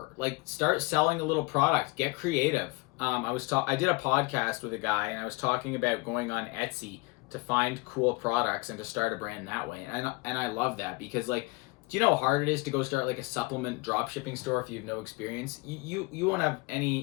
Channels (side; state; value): right; quieter; 24.9 dB